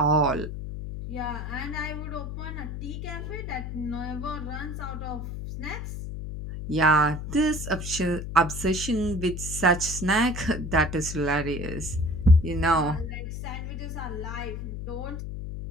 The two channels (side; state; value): left; noise; hum, 6 dB below the sound